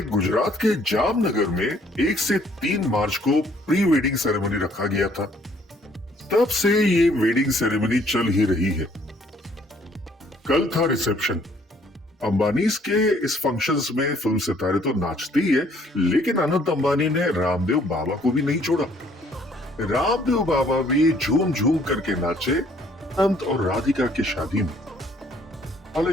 गुजरात के जामनगर में 1 से 3 मार्च को प्री वेडिंग सेरेमनी रखा गया था। तब से ये वेडिंग सेरेमनी चल ही रही है। कल था रिसेप्शन। अंबानीज के इस फंक्शंस में फिल्म सितारे तो नाचते ही है, लेकिन अनंत अंबानी ने रामदेव बाबा को भी नहीं छोड़ा। रामदेव बाबा भी झूम झूम करके नाचे अनंत और राधिका की शादी में।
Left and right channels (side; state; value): both; normal; correlation 0.62